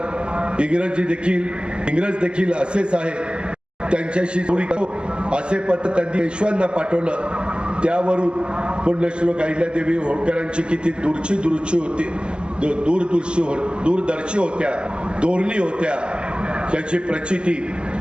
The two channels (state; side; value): late; left; 0.051 ms